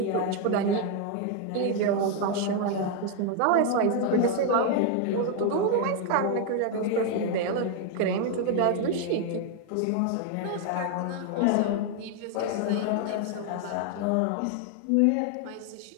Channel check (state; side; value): different; both; correlation 0.01